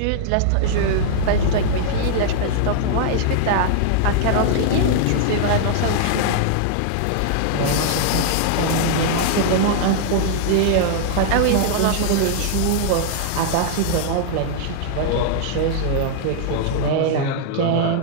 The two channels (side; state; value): both; different; correlation -0.01